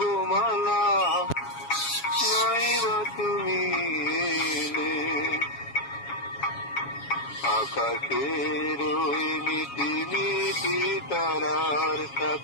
মালা, নাইবা তুমি এলে। আকাশের ওই মিটি মিটি তারার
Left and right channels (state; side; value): late; right; 7.2 ms